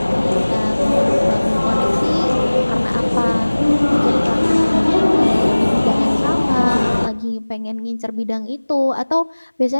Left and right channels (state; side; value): inverted; both; correlation -1.00